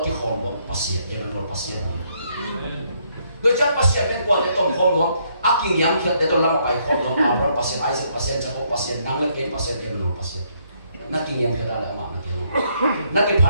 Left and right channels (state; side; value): inverted; both; correlation -0.71